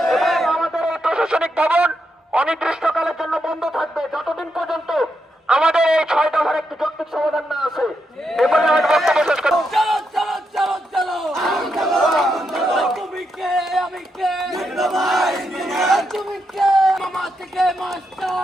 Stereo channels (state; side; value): normal; both; correlation 0.83